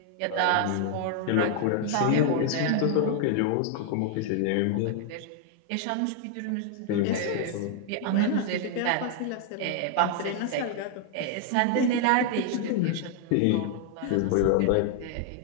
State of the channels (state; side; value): different; both; correlation 0.00